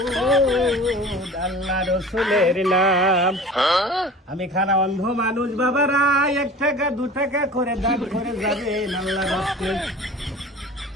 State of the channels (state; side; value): normal; both; correlation 0.40